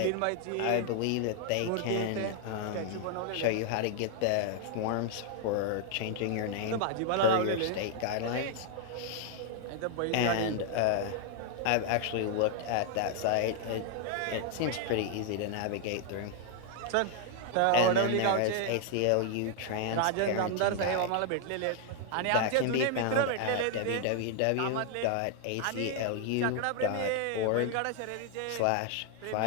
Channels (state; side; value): different; both; correlation 0.00